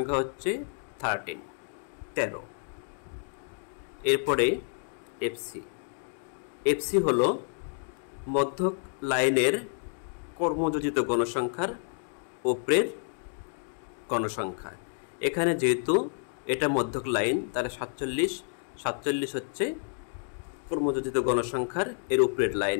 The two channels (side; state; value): right; silent; 55 dB below the other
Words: হচ্ছে 13। এরপরে FC হলো মধ্যক লাইনের কর্মযোজিত গণসংখ্যার উপরের গণসংখ্যা। এখানে যেহেতু এটা মধ্যক লাইন, তাহলে 47 হচ্ছে কর্মযোজিত গণসংখ্যার এর উপরের